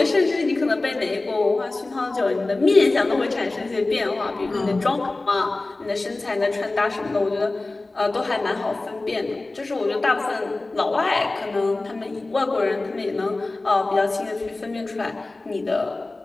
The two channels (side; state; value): right; quieter; 3.1 dB